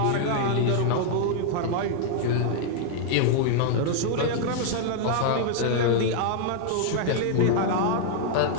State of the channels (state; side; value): different; both; correlation -0.01